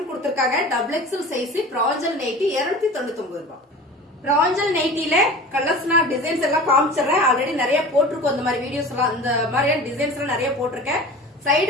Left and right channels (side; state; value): both; normal; correlation 0.37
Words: கொடுத்திருக்காங்க. Double XL size. Pranjal nighty 299 ரூபாய். பிராஞ்சல் நைட்டில கலர்ஸ்னா டிசைன்ஸ் எல்லாம் காமிச்சிடுறேன். ஆல்ரெடி நிறைய போட்டிருக்கோம் இந்த மாதிரி வீடியோஸ் எல்லாம். இந்த மாதிரியான டிசைன்ஸ் எல்லாம் நிறைய போட்டிருக்கேன்.